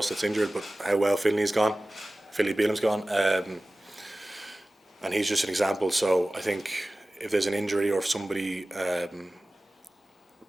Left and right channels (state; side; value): normal; both; correlation 0.97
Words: that's injured, but how well Finley's gone. Philly Beelam's gone, and he's just an example. So I think if there's an injury or if somebody